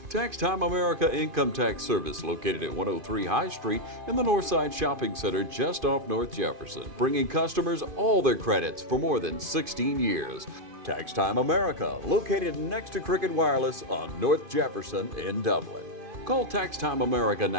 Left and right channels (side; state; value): left; late; 2.5 ms